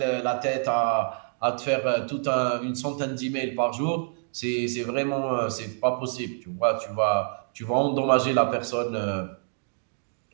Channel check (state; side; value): silent; left; digital silence